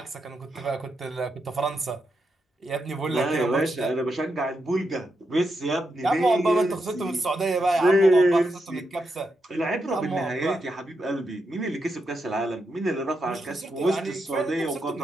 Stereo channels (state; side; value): normal; both; correlation 0.84